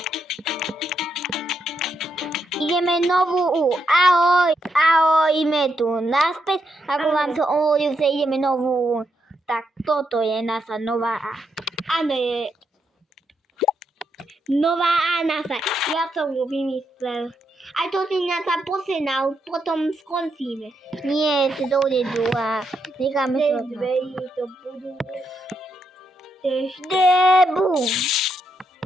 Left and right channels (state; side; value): normal; both; correlation 0.80